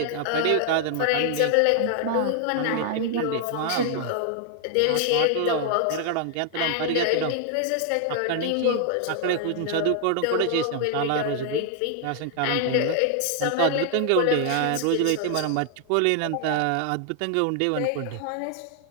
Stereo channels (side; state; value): both; different; correlation 0.00